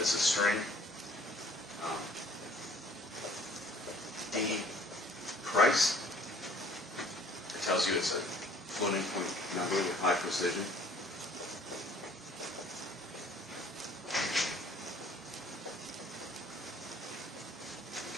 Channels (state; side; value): normal; both; correlation 0.56